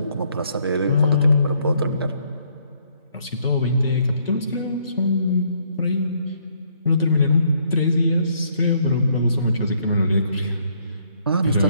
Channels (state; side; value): inverted; both; correlation -0.69